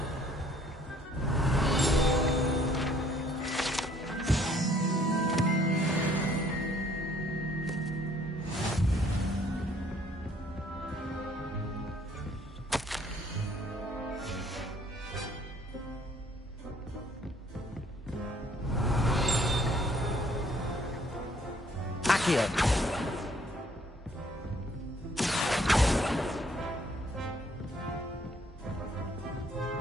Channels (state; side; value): normal; both; correlation 0.62